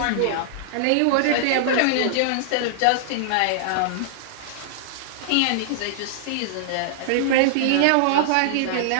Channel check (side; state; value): both; different; correlation -0.01